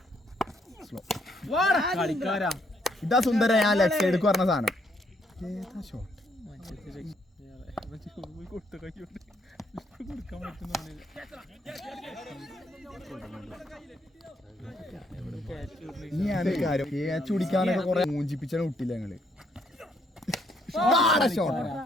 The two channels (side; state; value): both; normal; correlation 0.71